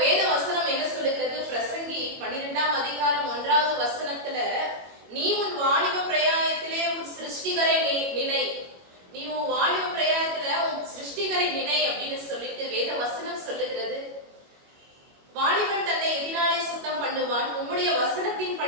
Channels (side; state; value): left; late; 21 ms